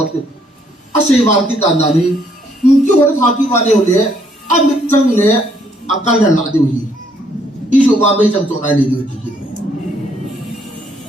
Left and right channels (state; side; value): normal; both; correlation 0.68